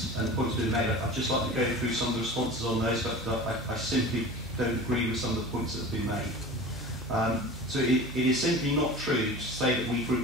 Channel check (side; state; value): both; normal; correlation 0.36